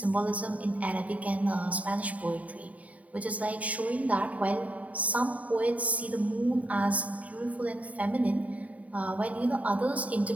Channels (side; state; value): left; late; 0.069 ms